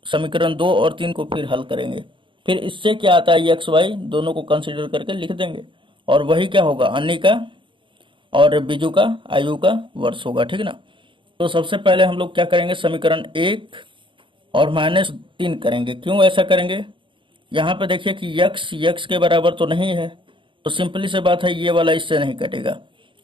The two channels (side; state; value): left; late; 0.24 ms